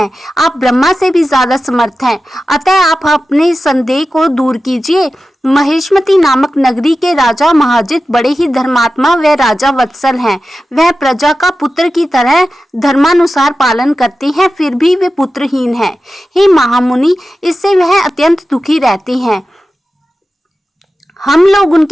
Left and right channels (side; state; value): both; normal; correlation 0.93